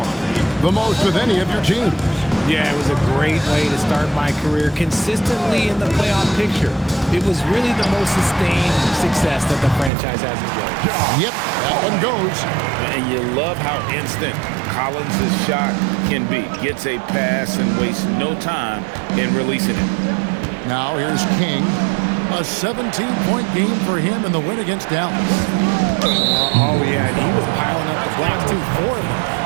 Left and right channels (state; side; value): drops out; left; at 9.9 s